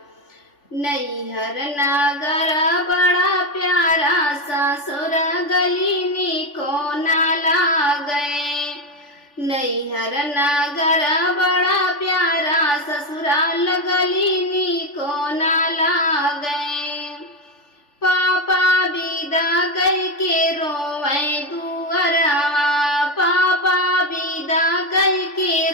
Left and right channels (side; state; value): right; late; 3.4 ms